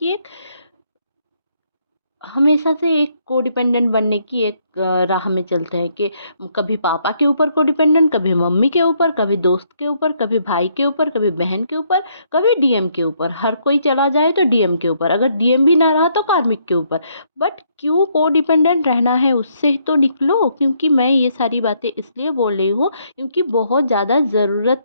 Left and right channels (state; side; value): inverted; both; correlation -0.71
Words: एक हमेशा से एक कोडिपेंडेंट बनने की एक राह में चलते हैं कि कभी पापा के ऊपर कोडिपेंडेंट, कभी मम्मी के ऊपर, कभी दोस्त के ऊपर, कभी भाई के ऊपर, कभी बहन के ऊपर, कभी डीएम के ऊपर। हर कोई चला जाए तो डीएम के ऊपर, अगर डीएम भी ना रहा तो कार्मिक के ऊपर। बट क्यों कोडिपेंडेंट रहना है, उससे तो निकलो। क्योंकि मैं ये सारी बातें इसलिए बोल रही हूँ क्योंकि बहुत ज़्यादा